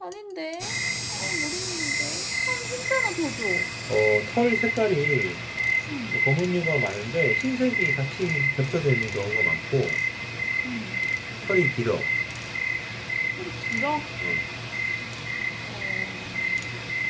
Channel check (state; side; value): identical; both; correlation 1.00